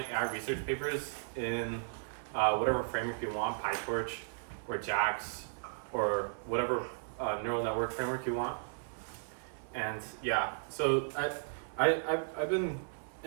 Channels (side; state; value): left; silent; 54 dB below the other